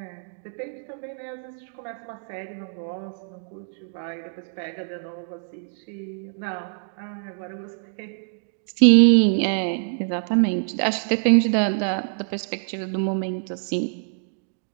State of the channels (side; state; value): left; silent; digital silence